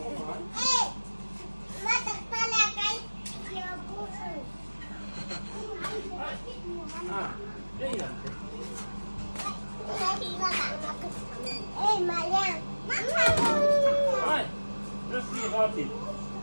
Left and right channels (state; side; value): inverted; both; correlation -1.00